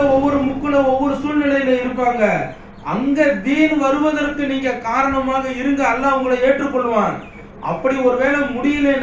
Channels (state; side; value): identical; both; correlation 1.00